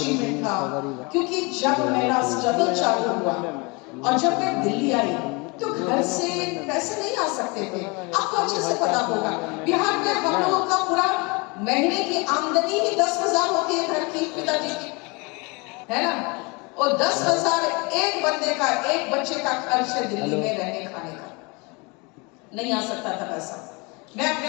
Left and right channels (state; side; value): quieter; right; 28.5 dB